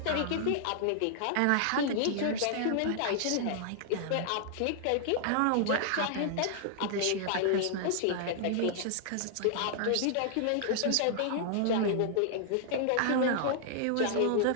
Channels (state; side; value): different; both; correlation -0.01